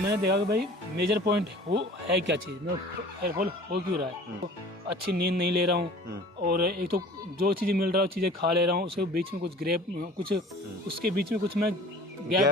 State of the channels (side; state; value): both; normal; correlation 0.45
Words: देखा कि भाई मेजर पॉइंट वो है क्या चीज़, मतलब हेयर फॉल हो क्यों रहा है। तो अच्छी नींद नहीं ले रहा हूँ, और एक तो जो चीज़ें मिल रहा है चीज़ें खा ले रहा हूँ, उसके बीच में कुछ उसके बीच में कुछ मैं